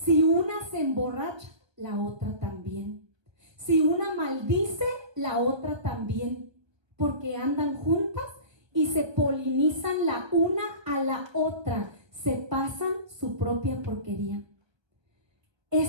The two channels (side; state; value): left; late; 1.3 ms